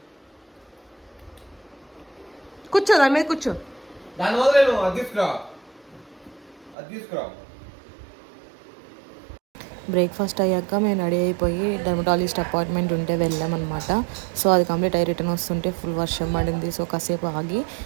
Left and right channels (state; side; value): drops out; left; at 6.8 s